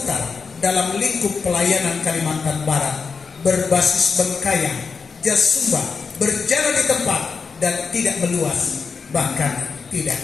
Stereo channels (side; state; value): right; quieter; 5.2 dB